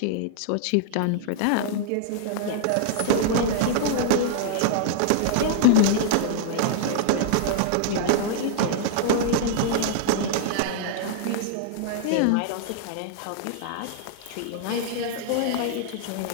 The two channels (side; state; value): both; different; correlation -0.01